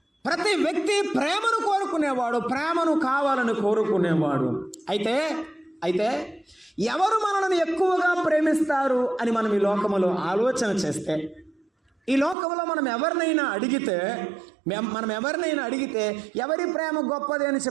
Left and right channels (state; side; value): drops out; left; at 12.4 s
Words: ప్రతి వ్యక్తి ప్రేమను కోరుకునేవాడు, ప్రేమను కావాలని కోరుకునేవాడు. అయితే ఎవరు మనల్ని ఎక్కువగా ప్రేమిస్తారు అని మనం ఈ లోకములో ఆలోచన చేస్తే, ఈ లోకంలో మనం ఎవరినైనా అడిగితే ఎవరి ప్రేమ గొప్పది అని